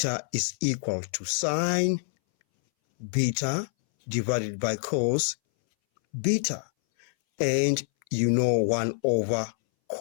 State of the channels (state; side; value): silent; right; 60 dB below the other